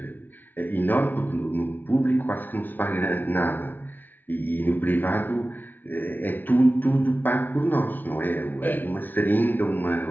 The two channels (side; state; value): right; late; 0.086 ms